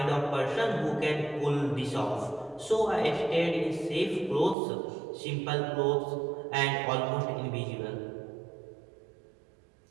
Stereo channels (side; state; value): left; drops out; at 4.5 s